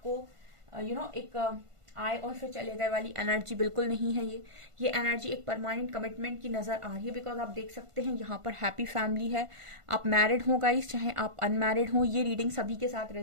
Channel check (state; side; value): late; left; 1.5 ms